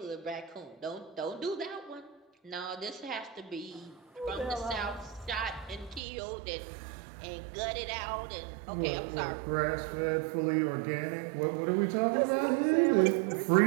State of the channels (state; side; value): drops out; left; at 6.0 s